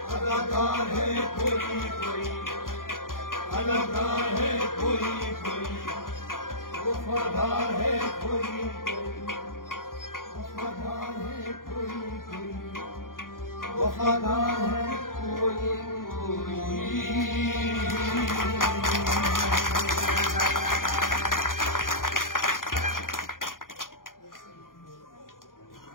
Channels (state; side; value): late; right; 0.90 ms